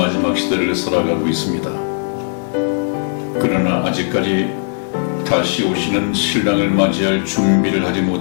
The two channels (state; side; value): silent; right; digital silence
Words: 시대를 살아가고 있습니다. 그러나 아직까지 다시 오시는 신랑을 맞이할 준비를 하지